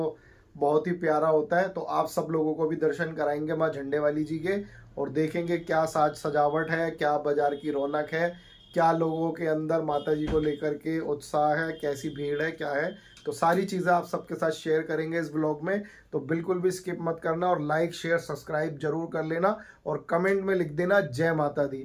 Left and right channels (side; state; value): both; identical; correlation 1.00